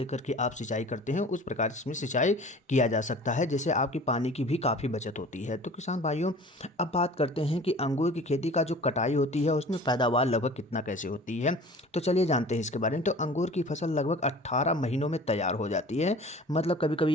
के आप सिंचाई करते हैं, उस प्रकार इसमें सिंचाई किया जा सकता है, जिससे आपकी पानी की भी काफ़ी बचत होती है। तो किसान भाइयों, अब बात करते हैं कि अंगूर की खेती का जो कटाई होती है उसमें पैदावार लगभग कितना कैसे होती है। तो चलिए जानते हैं इसके बारे में। तो अंगूर की फसल लगभग 18 महीनों में तैयार हो जाती है, मतलब कभी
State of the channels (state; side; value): normal; both; correlation 0.44